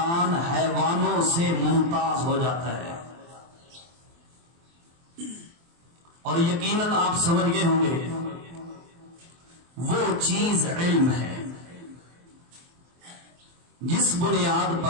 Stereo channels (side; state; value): left; late; 23 ms